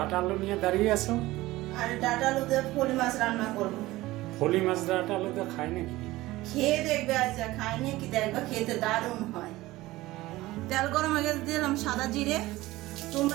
আলু নিয়ে দাঁড়িয়ে আছো? আর ডাটা আলু দিয়ে পলি মাছ রান্না করব। ফলি মাছ ডাটা আলু তো খাই নাকি? খেয়ে দেখবে, আচ্ছা খাইনি কি দেখবে, খেতে দারুণ হয়। তেল গরম হয়ে গেছে, দিলাম সাদা জিরে।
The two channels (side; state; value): left; quieter; 18.2 dB